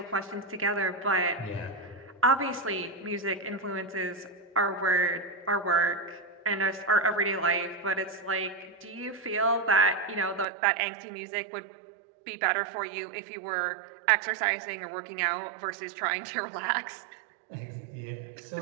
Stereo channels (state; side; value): drops out; left; at 10.5 s